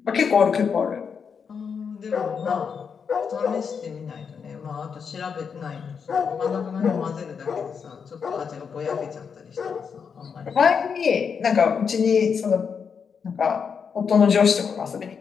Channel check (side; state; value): right; quieter; 6.4 dB